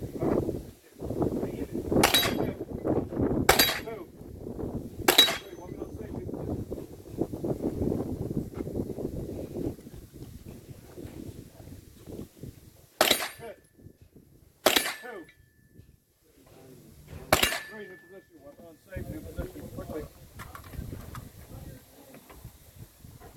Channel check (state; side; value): identical; both; correlation 1.00